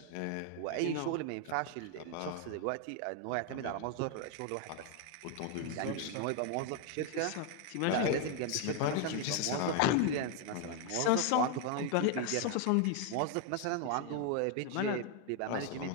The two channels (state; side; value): different; both; correlation 0.01